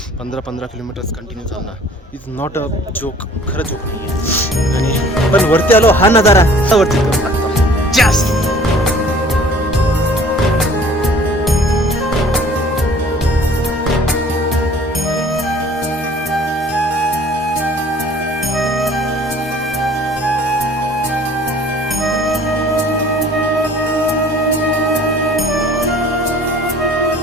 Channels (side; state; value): both; normal; correlation 0.52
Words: 15 किलोमीटर्स कंटिन्यू चालणार इज नॉट अ जोक. खरं जोक नाही आहे. आणि पण वरती आलो हा नजारा वरती करू लागतो जास्त.